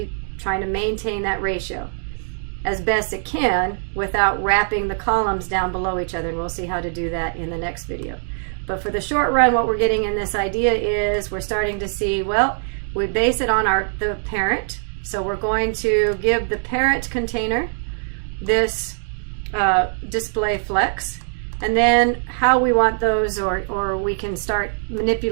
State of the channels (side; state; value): left; silent; 64 dB below the other